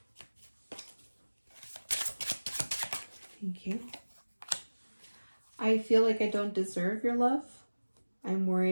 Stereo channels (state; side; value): inverted; both; correlation -1.00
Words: Thank you. I feel like I don't deserve your love. I'm